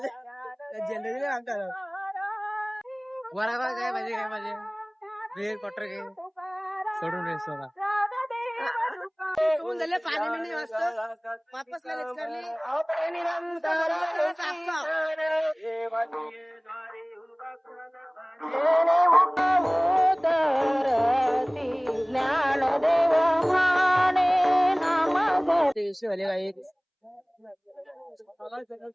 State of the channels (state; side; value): identical; both; correlation 1.00